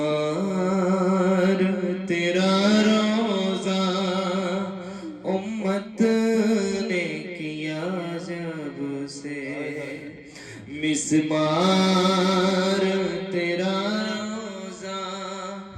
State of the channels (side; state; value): both; identical; correlation 1.00